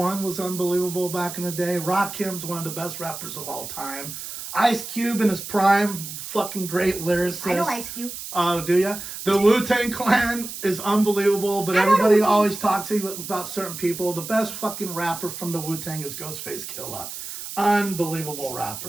was unbelievable back in the day. Rakim's one of the best rappers of all time. Ice Cube in his prime, fucking great lyricist. I know Ice Cube. Oh, do ya? The Wu-Tang Clan is unbelievable, but everybody always talks about certain people. The best fucking rapper from the Wu-Tang is Ghostface Killah. Unbelievable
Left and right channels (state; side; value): noise; right; hiss, 9 dB below the sound